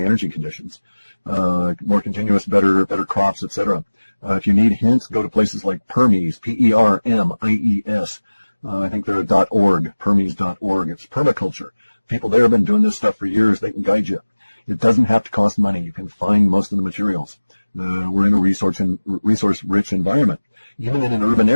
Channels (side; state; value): both; inverted; correlation -1.00